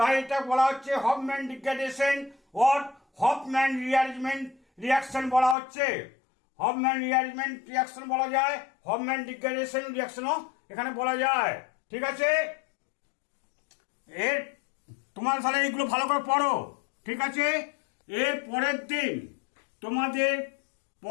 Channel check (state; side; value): drops out; right; at 5.6 s